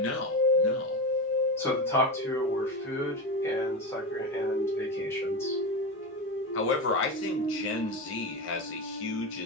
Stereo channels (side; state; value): both; normal; correlation 0.18